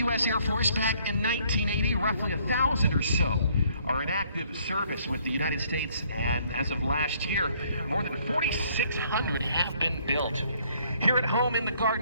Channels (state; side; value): inverted; both; correlation -0.64